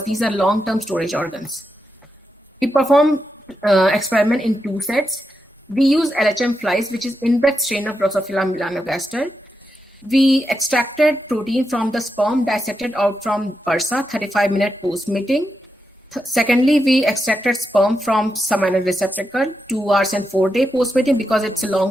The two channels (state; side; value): normal; both; correlation 0.86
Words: these are long-term storage organs. We perform experiment in 2 sets. We use LHM flies, which is inbred strain of Drosophila melanogaster. We extracted protein from the sperm, dissected out from bursa, 35-minute post mating. Secondly, we extracted sperm from seminal receptacle, 2 hours and 4-day post mating, because it's a